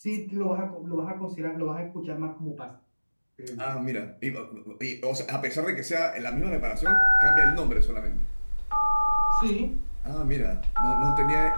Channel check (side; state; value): both; inverted; correlation -1.00